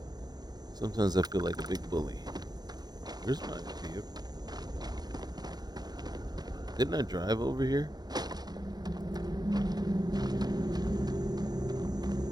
Sometimes I feel like a big bully. Where's my vehicle? Didn't I drive over here?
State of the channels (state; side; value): late; left; 0.19 ms